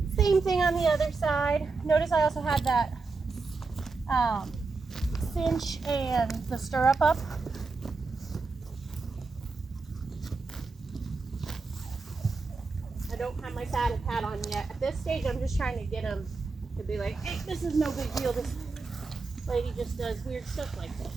Same thing on the other side. Notice I also had that cinch and the stirrup up. I don't have my saddle pad on yet. At this stage, I'm just trying to get him to be like, hey, this is no big deal. This lady just does weird stuff like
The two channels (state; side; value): quieter; left; 4.1 dB